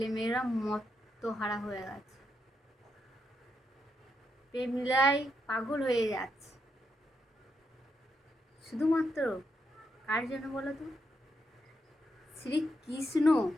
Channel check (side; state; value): both; normal; correlation 0.81